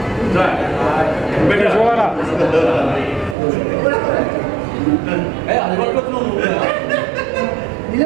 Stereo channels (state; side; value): drops out; left; at 3.4 s